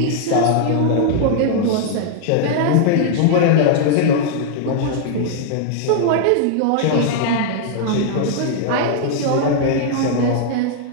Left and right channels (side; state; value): both; different; correlation 0.00